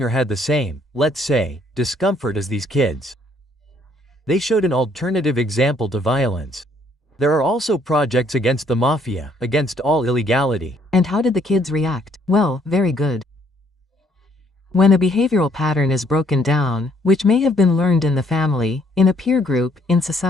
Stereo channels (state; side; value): normal; both; correlation 0.66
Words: or had the same, let's say, discomfort as these kids. They showed an alternative example to violence. There are also projects against the mafia, against all illegality. And how did the kids react? Well, very good. When a behavioral pattern is broken down, which may have been learned in the family, in a peer group, in